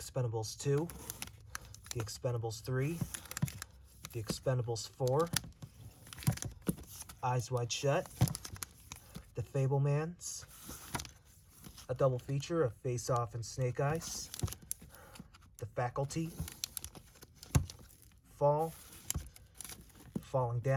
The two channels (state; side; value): identical; both; correlation 1.00